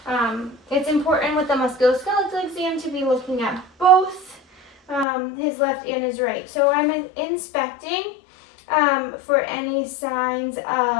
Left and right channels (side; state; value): right; drops out; at 5.1 s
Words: it's important with the musculoskeletal exam to be looking at both his left and his right. So I'm inspecting for any signs